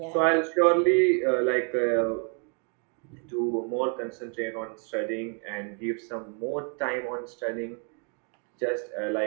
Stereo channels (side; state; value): left; quieter; 39.2 dB